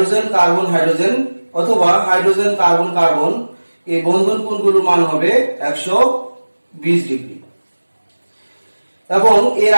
কার্বন হাইড্রোজেন অথবা হাইড্রোজেন কার্বন কার্বন এই বন্ধন কোণগুলোর মান হবে 120 ডিগ্রি এবং এর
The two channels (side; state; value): both; inverted; correlation -1.00